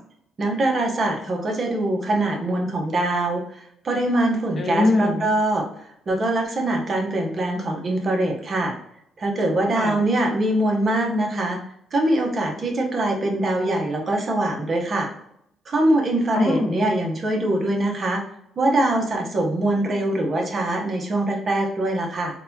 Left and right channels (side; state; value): both; normal; correlation 0.79